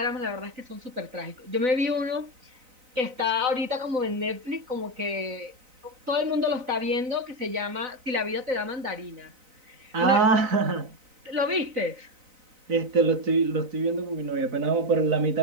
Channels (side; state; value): left; late; 3.9 ms